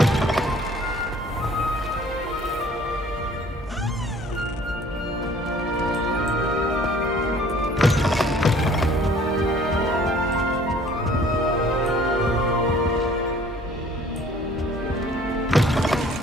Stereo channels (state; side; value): normal; both; correlation 0.54